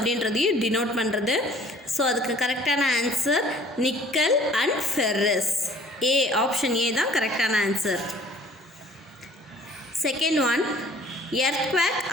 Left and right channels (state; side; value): normal; both; correlation 0.53